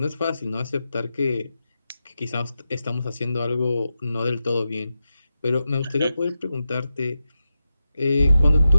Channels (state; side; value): inverted; both; correlation -0.90